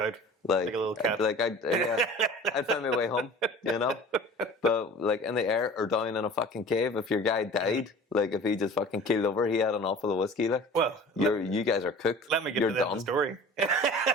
out. Like a little cat. I'd find my way home, But like in the air or down in a fucking cave, if your guy died, like if he just fucking keeled over, he had enough of the whiskey. Like, well, you guys are cooked. Let me get You're to the story.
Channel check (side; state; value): both; normal; correlation 0.42